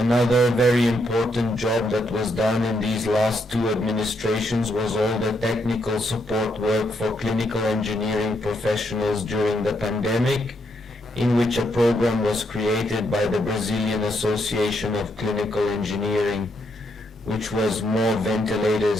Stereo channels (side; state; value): both; normal; correlation 0.77